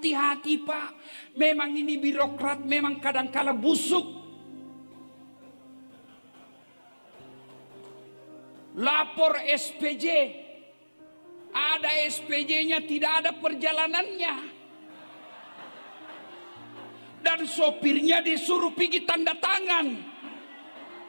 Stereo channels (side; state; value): both; inverted; correlation -1.00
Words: Pak, memang ini birokrat memang kadangkala busuk. Lapor SPJ, ada SPJ-nya tidak ada perjalanannya, dan sopirnya disuruh pergi tanda tangan.